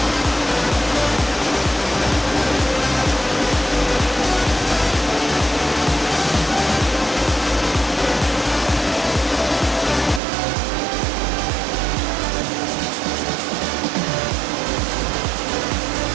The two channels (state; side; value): drops out; left; at 10.2 s